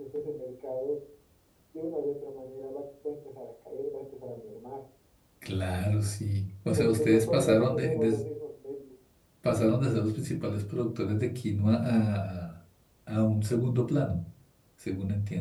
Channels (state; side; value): identical; both; correlation 1.00